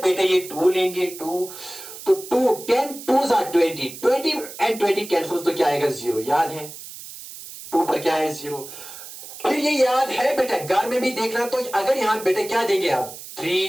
लेंगे, 2, तो 10 2s are 20 एंड 20 कैंसिल, तो क्या आएगा? 0। याद है 2 पर क्या है? 0। फिर ये याद है बेटा, घर में भी देखना। तो अगर यहां बेटा क्या देंगे आप?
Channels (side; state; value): right; noise; hiss, 13 dB below the sound